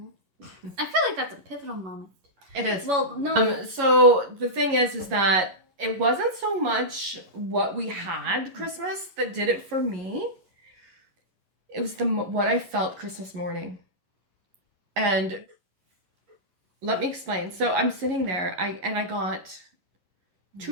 like that's a pivotal moment. It is. Well, no. So the thing is that it wasn't so much what we had Christmas that did it for me. It was what I felt Christmas morning. And let me explain. So I'm sitting there, I got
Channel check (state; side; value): late; left; 11 ms